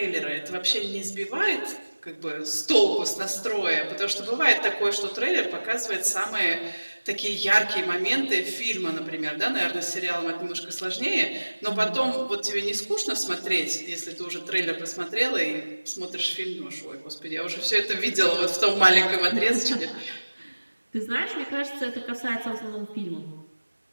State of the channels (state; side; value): inverted; both; correlation -1.00